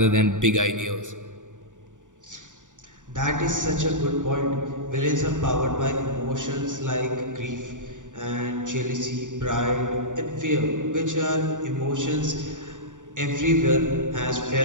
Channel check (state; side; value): late; left; 0.87 ms